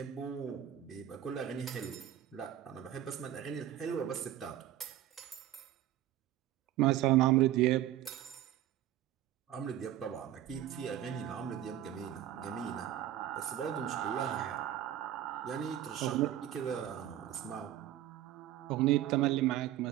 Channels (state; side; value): quieter; left; 12.2 dB